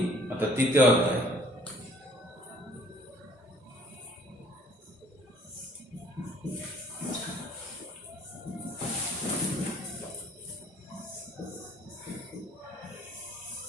অর্থাৎ তৃতীয় অধ্যায়।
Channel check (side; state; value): both; normal; correlation 0.57